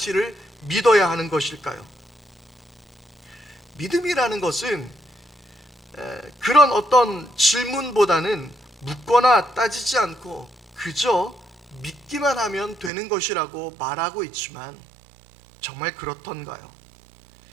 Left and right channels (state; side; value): drops out; left; at 12.9 s